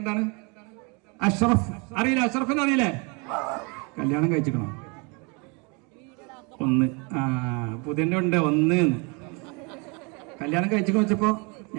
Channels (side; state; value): left; quieter; 31.7 dB